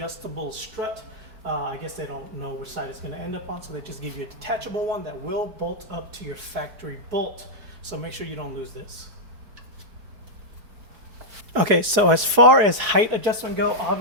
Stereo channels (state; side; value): late; left; 4.7 ms